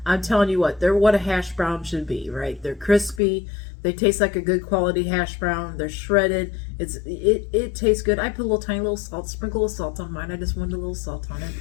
I'm telling you what a hash brown should be, right? They're crispy. They taste like a good quality hash brown. They're shredded. It tastes good. I put a tiny little salt, sprinkle of salt on mine. I just wanted a little salt on it.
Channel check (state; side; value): drops out; right; at 3.2 s